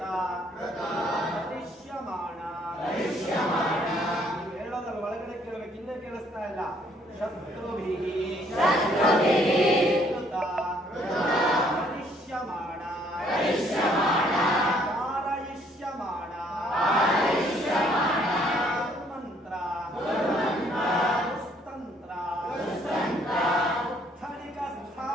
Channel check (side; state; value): both; normal; correlation 0.65